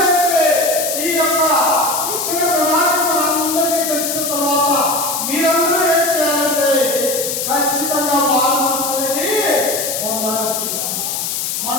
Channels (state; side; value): noise; left; hiss, 2 dB below the sound